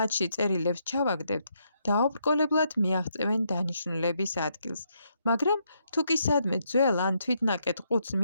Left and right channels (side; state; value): both; inverted; correlation -0.77